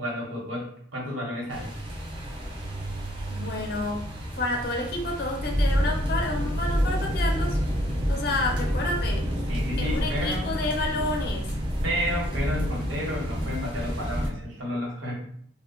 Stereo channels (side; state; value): both; normal; correlation 0.64